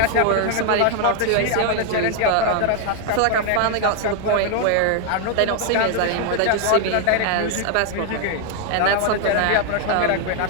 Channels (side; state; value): both; different; correlation 0.00